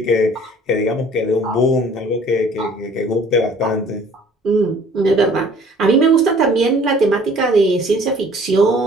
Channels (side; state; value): both; normal; correlation 0.54